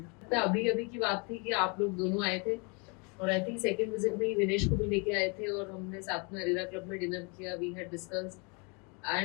तो अभी अभी की बात थी कि आप लोग दोनों आए थे, और आई थिंक सेकंड विजिट में ही विनेश को भी लेके आए थे, और हमने साथ में अरेरा क्लब में डिनर किया। We had discussed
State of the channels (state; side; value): quieter; right; 32.8 dB